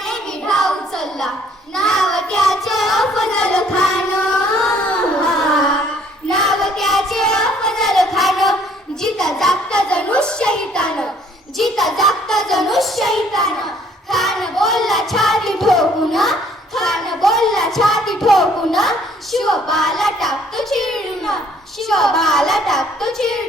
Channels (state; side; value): normal; both; correlation 0.61